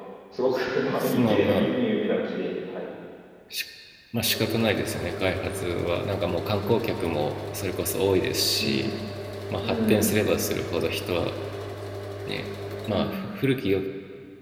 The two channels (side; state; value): both; identical; correlation 1.00